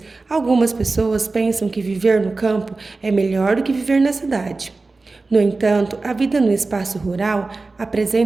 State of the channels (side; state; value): left; quieter; 3.6 dB